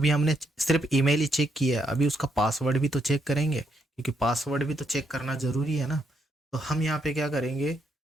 हमने सिर्फ ईमेल ही चेक किया, अभी उसका पासवर्ड भी तो चेक करेंगे, क्योंकि पासवर्ड भी तो चेक करना ज़रूरी है ना। तो हम यहाँ पे क्या करेंगे,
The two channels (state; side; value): normal; both; correlation 0.77